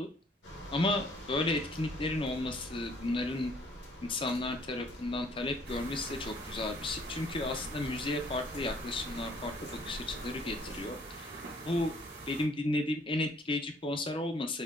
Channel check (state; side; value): normal; both; correlation 0.61